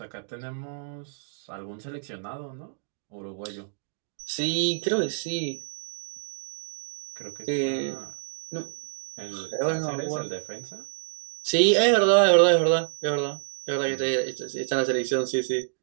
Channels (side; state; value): left; silent; digital silence